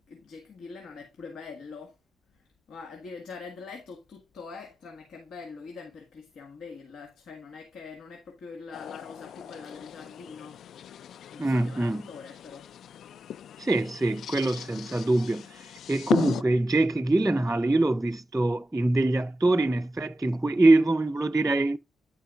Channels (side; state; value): both; normal; correlation 0.93